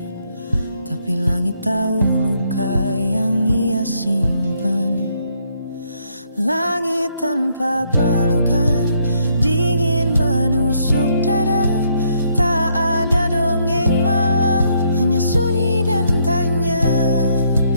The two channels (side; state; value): both; inverted; correlation -0.71